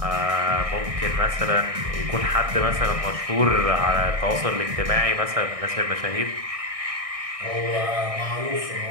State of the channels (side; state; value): left; late; 1.6 ms